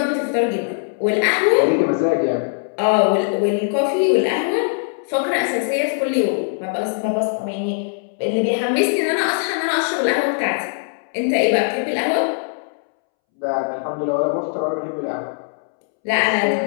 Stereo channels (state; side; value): silent; right; 65 dB below the other